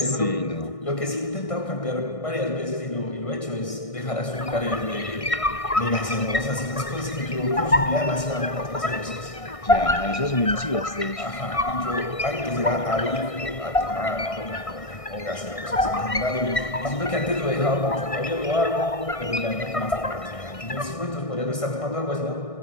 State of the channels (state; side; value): late; right; 1.6 ms